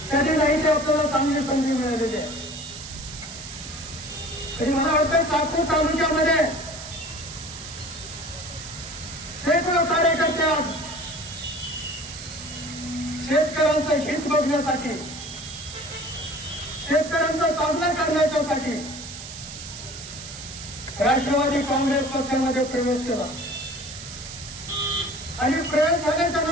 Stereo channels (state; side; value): noise; right; hiss, 11 dB below the sound